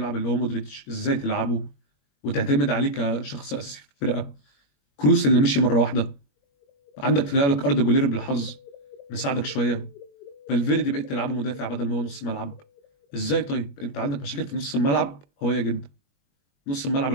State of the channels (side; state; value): right; late; 21 ms